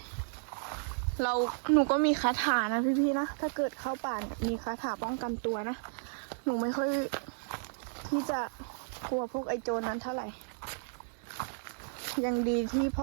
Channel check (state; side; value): silent; left; digital silence